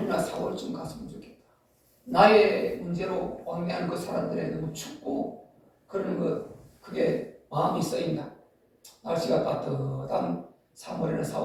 4월쯤 갔으면 좋겠다. 나의 문제로 왕래하는 그 사람들의 너무 춥고 그러는 그게 마음이 쓰인다. 날씨가 따뜻한 3월이나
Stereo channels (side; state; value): both; identical; correlation 1.00